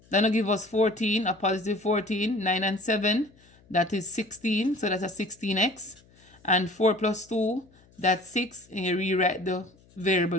Then it'll give us 14, a positive 14, 9 and 7, that is 16, so that's a 16x. And 4 plus 2, that's 6, and you rewrite the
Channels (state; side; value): noise; left; hum, 29 dB below the sound